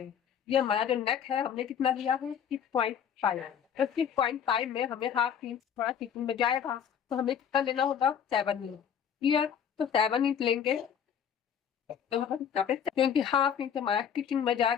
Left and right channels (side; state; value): right; quieter; 8.2 dB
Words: ये हमारा जो नेक है हमने कितना लिया है 6.5। तो 6.5 में हमें हाफ इंच थोड़ा स्टिचिंग में जाएगा, तो हमें कितना लेना होगा 7 इंच। क्लियर, तो 7 इंच लेंगे, तो क्योंकि हाफ इंच हमारा स्टिचिंग में